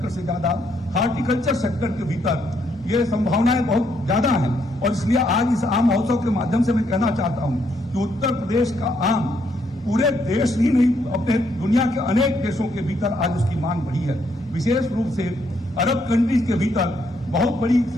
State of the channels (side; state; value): both; normal; correlation 0.73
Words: हार्टिकल्चर सेक्टर के भीतर ये संभावनाएं बहुत ज्यादा हैं। और इसलिए आज इस आम महोत्सव के माध्यम से मैं कहना चाहता हूं कि उत्तर प्रदेश का आम पूरे देश ही नहीं, अपने दुनिया के अनेक देशों के भीतर आज उसकी मांग बढ़ी है। विशेष रूप से अरब कंट्रीज के भीतर बहुत बड़ी